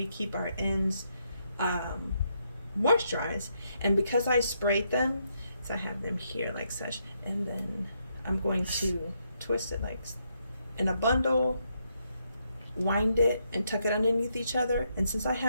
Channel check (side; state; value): both; inverted; correlation -0.78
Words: keep our ends moisturized. And because I sprayed them, so I have them here like such, and then I'm going to twist it like in a bundle, wind it, and tuck it underneath each other. And since I